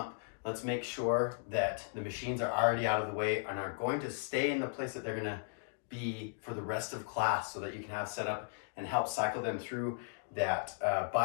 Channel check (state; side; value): silent; right; digital silence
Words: let's make sure that the machines are already out of the way and are going to stay in the place that they're going to be for the rest of class, so that you can have set up and help cycle them through that